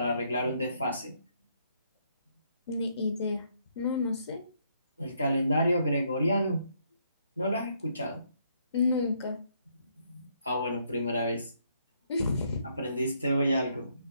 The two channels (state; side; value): inverted; both; correlation -0.72